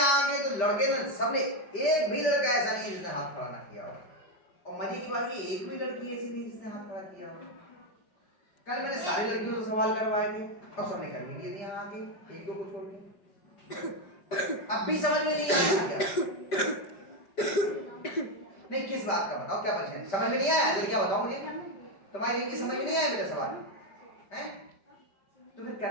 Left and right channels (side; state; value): right; late; 5.0 ms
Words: आके? तो लड़के ने सबने, एक भी लड़का ऐसा नहीं है जिसने हाथ खड़ा ना किया हो। और मजे की बात ये एक भी लड़की ऐसी नहीं जिसने हाथ खड़ा किया हो। कल मैंने सारी लड़कियों से सवाल करवाए थे और सबने कर भी दिए थे यहाँ आके, एक दो को छोड़ के। अब भी समझ में नहीं आया क्या? नहीं, किस बात का बताओ, क्या परेशानी? समझ में नहीं आया? जल्दी क्या बताओ मुझे, तुम्हारी इनकी समझ में नहीं आया मेरा सवाल है? तो फिर